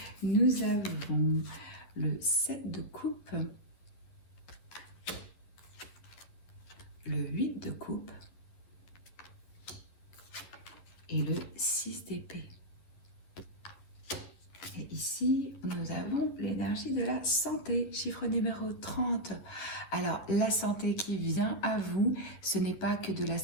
Nous avons le 7 de coupe, le 8 de coupe, et le 6 d'épée. Et ici, nous avons l'énergie de la santé, chiffre numéro 30. Alors, la santé qui vient à vous, ce n'est pas que de la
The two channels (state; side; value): late; right; 11 ms